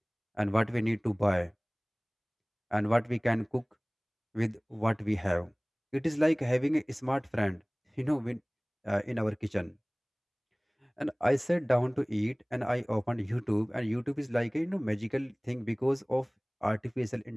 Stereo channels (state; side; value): identical; both; correlation 1.00